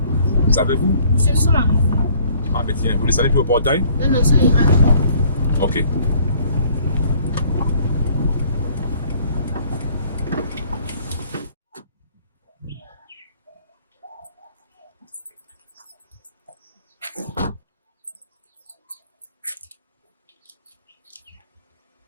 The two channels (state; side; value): inverted; both; correlation -0.58